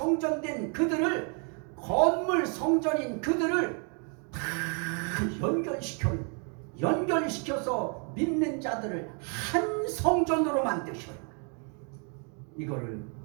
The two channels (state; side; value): quieter; left; 39.0 dB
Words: 그들을, 건물 성전인 그들을 다 연결시켜요. 연결시켜서 믿는 자들을 한 성전으로 만드셔요. 이거를